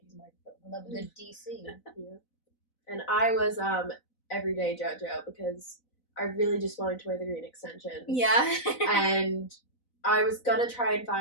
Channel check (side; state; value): right; late; 4.0 ms